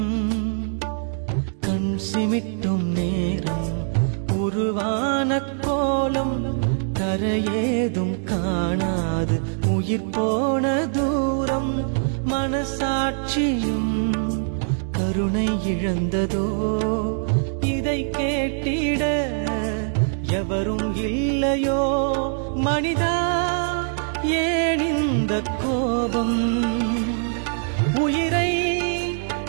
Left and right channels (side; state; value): left; silent; digital silence